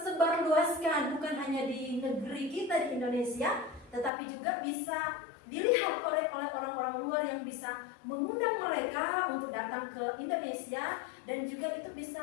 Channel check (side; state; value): right; drops out; at 4.1 s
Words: luaskan, bukan hanya di negeri kita di Indonesia, tetapi juga bisa dilihat oleh orang-orang luar yang bisa mengundang mereka untuk datang ke Indonesia, dan juga itu